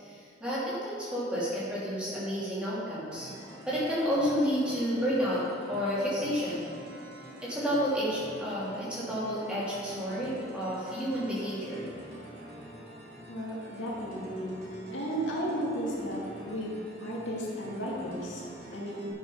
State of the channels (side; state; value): both; normal; correlation 0.46